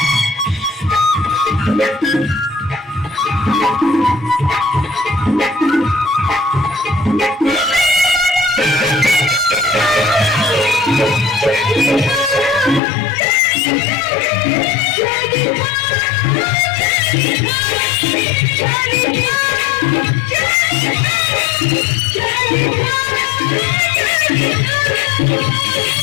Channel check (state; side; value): drops out; right; at 12.8 s